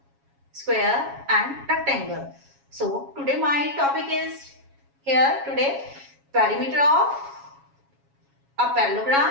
square and rectangle. So today my topic is today perimeter of a parallelogram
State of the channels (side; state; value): left; late; 7.3 ms